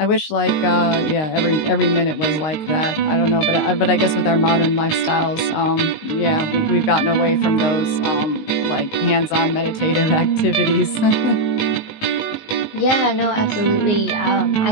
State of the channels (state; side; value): late; right; 19 ms